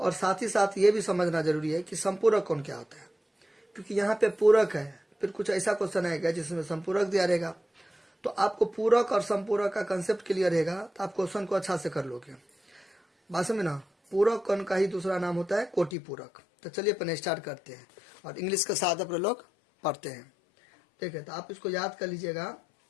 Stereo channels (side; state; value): right; drops out; at 15.9 s